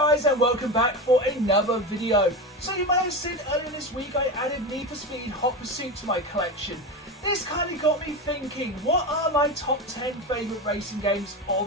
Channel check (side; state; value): both; normal; correlation 0.21